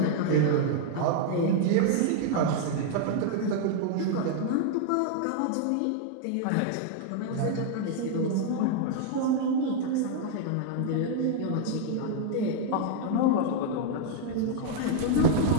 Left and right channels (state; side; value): different; both; correlation 0.00